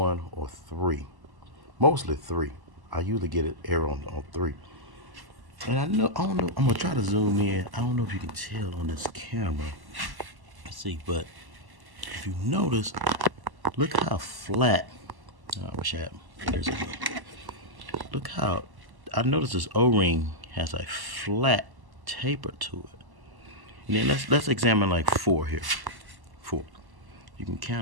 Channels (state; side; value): late; left; 1.1 ms